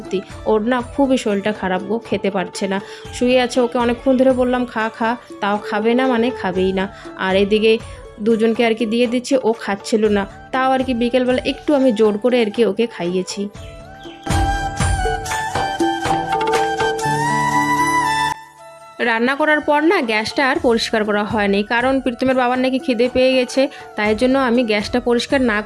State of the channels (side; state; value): both; identical; correlation 1.00